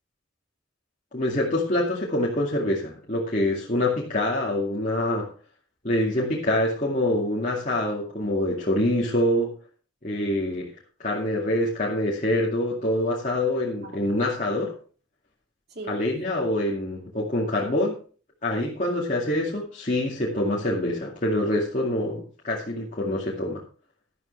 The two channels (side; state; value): both; normal; correlation 0.32